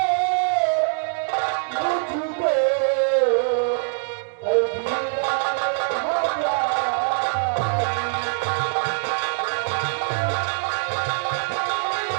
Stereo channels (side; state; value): left; silent; 63 dB below the other